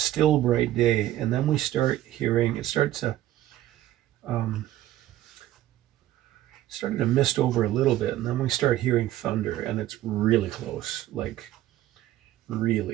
bright day. And then we start hearing, it started to mist over a little bit. And then we start hearing thunder, and it's really close, like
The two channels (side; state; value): left; quieter; 13.9 dB